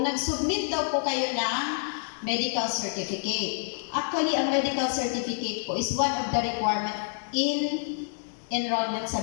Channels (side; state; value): right; silent; 59 dB below the other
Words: nag-submit daw po kayo ng medical certificate. Actually, ang medical certificate po is one of the requirement in enrollment